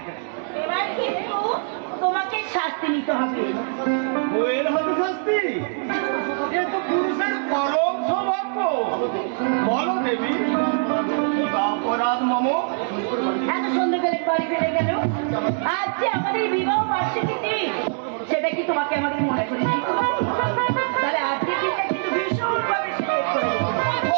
এবার কিন্তু তোমাকে শাস্তি নিতে হবে। বইয়ের হাতে শাস্তি? এ তো পুরুষের পরম সৌভাগ্য। বলো দেবী, অপরাধ মম। এত সন্ধ্যেবেলা বাড়ি ফিরে গেল, আজ যে আমাদের বিবাহ বার্ষিকী দিন, সেটা কি তোমাকে আমাদের মনে করে দিই? তাহলে আজকে দিনটা কিন্তু ভীষণভাবে select করে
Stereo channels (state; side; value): silent; left; 63 dB below the other